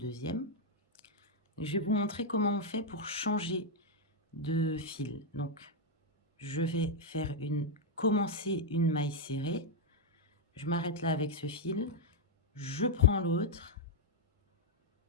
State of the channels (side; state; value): both; normal; correlation 0.00